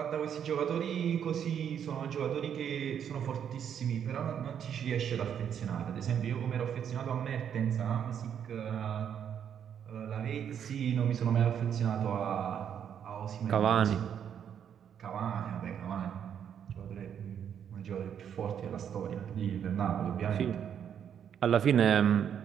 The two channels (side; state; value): left; quieter; 8.6 dB